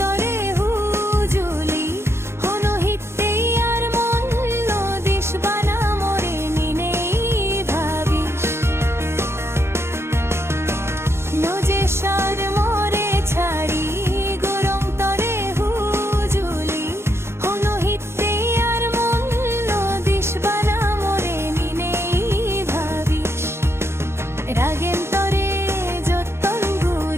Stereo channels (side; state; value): left; late; 0.12 ms